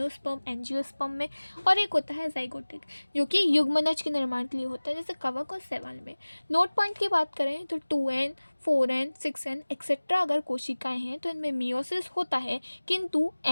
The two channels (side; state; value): both; inverted; correlation -1.00